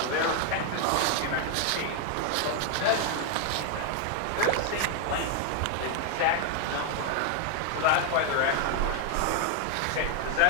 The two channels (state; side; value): different; both; correlation 0.00